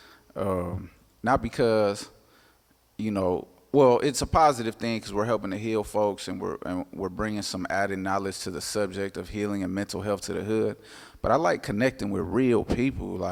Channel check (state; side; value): identical; both; correlation 1.00